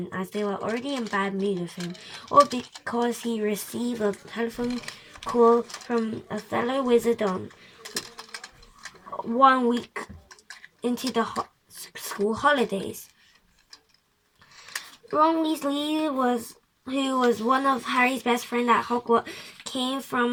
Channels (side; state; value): both; identical; correlation 1.00